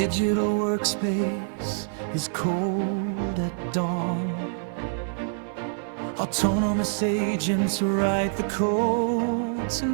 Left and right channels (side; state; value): left; silent; 61 dB below the other